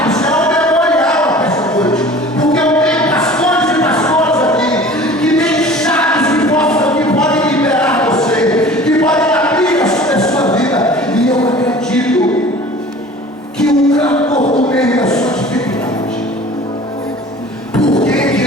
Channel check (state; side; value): normal; both; correlation 0.44